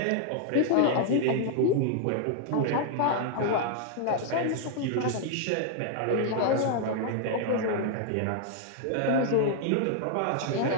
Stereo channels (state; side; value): different; both; correlation 0.00